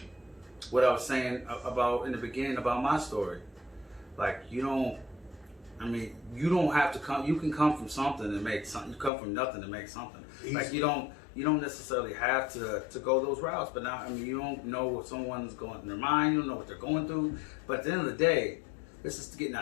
what I was saying about in the beginning about my story. Like you don't have to come. You can come from something and make something. You come from nothing to make something. Easy. Like you don't necessarily have to go those routes. But now, I mean, you don't know what someone's going in their mind. You don't know what they're going through. But at the end of the day, this is getting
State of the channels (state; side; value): drops out; right; at 9.1 s